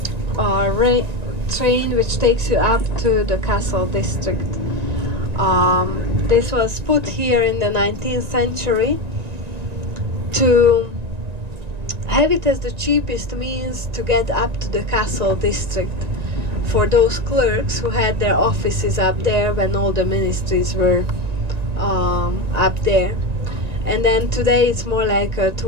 train which takes you up to the castle district. This was put here in the 19th century to have it as the cheapest means to get up to the castle district for those clerks who had their offices up there when all the ministries were up there. And then today it's more like a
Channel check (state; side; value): late; left; 1.9 ms